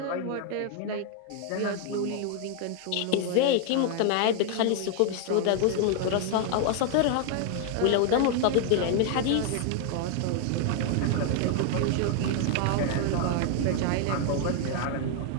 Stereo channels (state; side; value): different; both; correlation 0.00